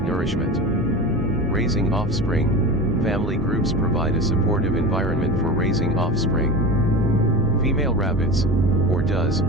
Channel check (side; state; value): both; normal; correlation 0.28